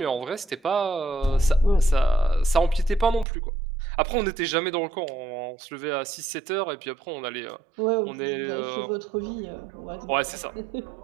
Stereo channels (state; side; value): drops out; left; at 3.2 s